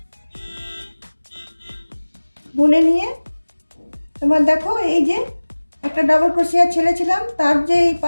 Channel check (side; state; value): both; inverted; correlation -1.00